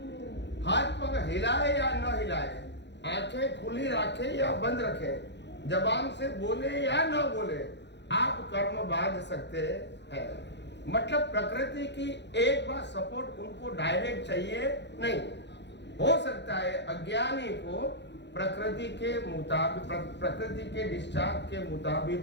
हाथ पग हिलाए या न हिलाए, आंखें खुली रखे या बंद रखें, जबान से बोले या न बोले, आप कर्म बांध सकते हैं। मतलब प्रकृति की एक बार सपोर्ट उनको डायरेक्ट चाहिए नहीं। हो सकता है अज्ञानी को प्रकृति के मुताबिक, प्रकृति के डिस्चार्ज के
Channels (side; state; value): right; late; 0.51 ms